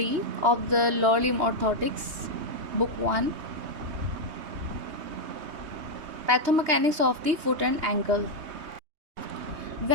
of the Law Limb Orthotics, Book 1, Pathomechanics of the Foot and Ankle.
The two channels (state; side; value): late; left; 3.2 ms